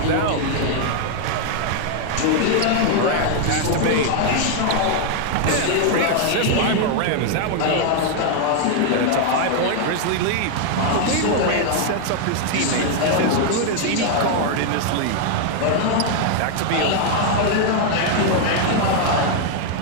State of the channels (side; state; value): both; different; correlation 0.00